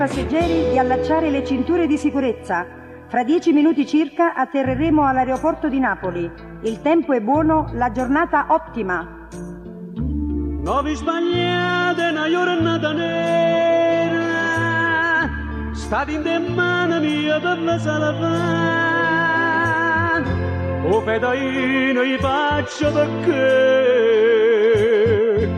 di allacciare le cinture di sicurezza. Fra 10 minuti circa atterreremo all'aeroporto di Napoli. Il tempo è buono, la giornata ottima. Non vi sbagliate, una giornata nera. State in mano mia per la sala. O fedaino gli faccio perché.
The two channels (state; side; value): identical; both; correlation 1.00